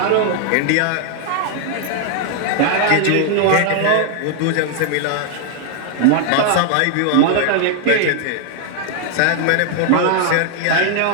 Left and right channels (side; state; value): both; different; correlation 0.00